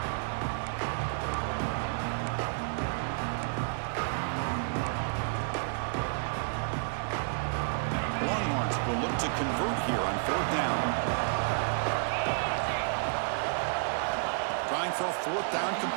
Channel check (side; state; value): left; silent; digital silence